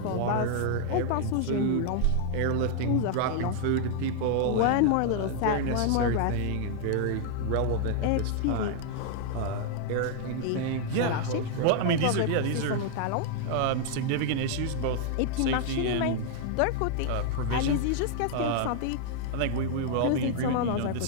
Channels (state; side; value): different; both; correlation 0.00